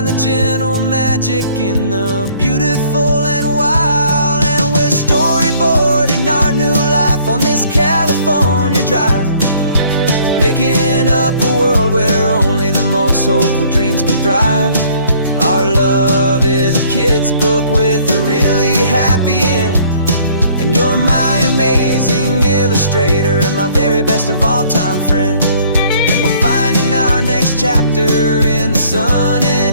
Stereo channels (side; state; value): both; inverted; correlation -0.59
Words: the gentle magic in the beautiful and wild. And we're storyboarding our new life on this California drive, making up a world where only the most hopeful dreams can thrive. Our love is a kid's book with a really happy end, and you're my amazing illustrator and my very best of all time friend. And we're finding our next chapter in the sun